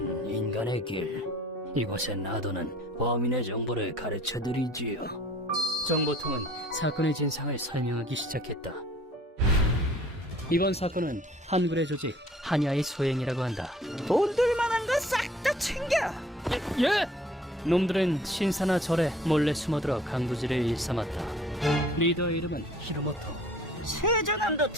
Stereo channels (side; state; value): both; normal; correlation 0.53